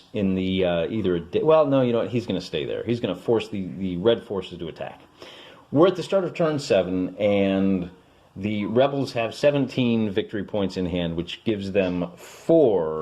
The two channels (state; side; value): identical; both; correlation 1.00